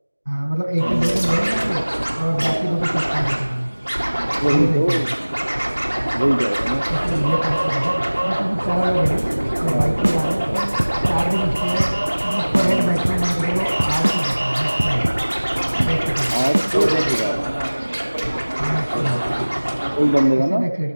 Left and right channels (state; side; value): inverted; both; correlation -1.00